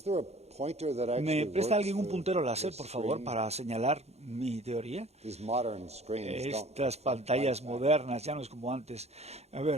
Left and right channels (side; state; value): left; late; 0.31 ms